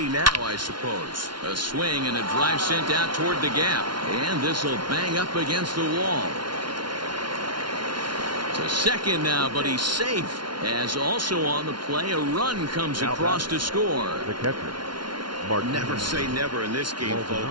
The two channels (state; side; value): late; left; 0.72 ms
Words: now, I suppose. A swing and a drive sent out toward the gap. And this will bang up against the wall. To second now, but he's safe. As also on the play, a run comes across to score. The catcher. Never say never in this game,